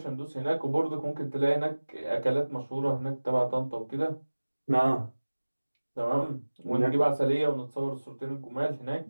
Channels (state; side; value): inverted; both; correlation -1.00